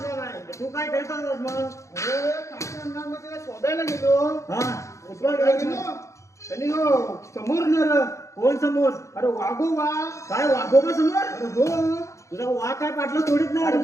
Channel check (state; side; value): late; right; 0.15 ms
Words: नाही तू काय करत होतास मग अरे काय अंगामध्ये त्याला शोधायला गेलो हा शोधायला गेलो त्यांनी हो समोर नर कोण समोर अरे वाघोबा काय वाघोबा समोर अरे हो तुझा वाघ काय पाटलं सोडित नाही अरे